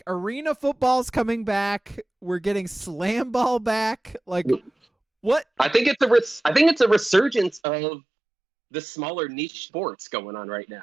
arena football's coming back. We're getting Slamball back. Like, what? I think it's a resurgence of the smaller niche sports going on right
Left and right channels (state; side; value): drops out; left; at 7.6 s